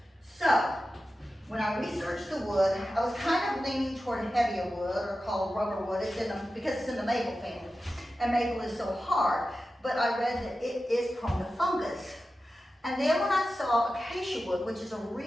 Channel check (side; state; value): both; normal; correlation 0.93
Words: So when I researched the wood, I was kind of leaning toward heavier wood, or called rubber wood, because it's in the maple family, and maple is so hard. But I read that it is prone to fungus. And then when I saw acacia wood, which is a